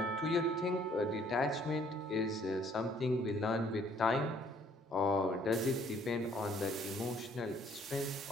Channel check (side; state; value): both; normal; correlation 0.62